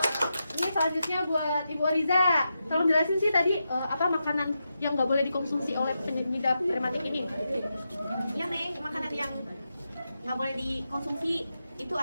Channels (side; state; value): both; inverted; correlation -0.87